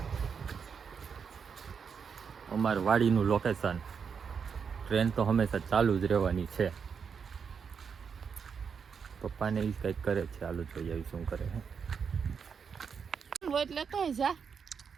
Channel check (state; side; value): quieter; left; 6.4 dB